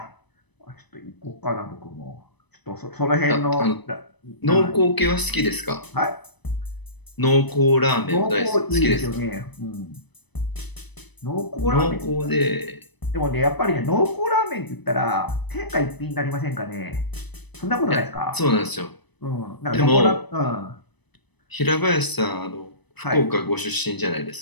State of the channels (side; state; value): right; late; 1.0 ms